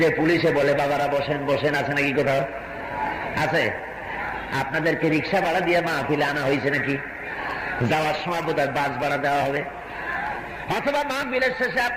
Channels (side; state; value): both; identical; correlation 1.00